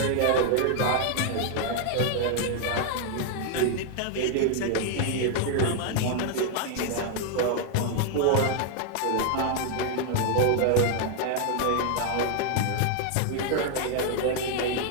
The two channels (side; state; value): both; different; correlation 0.00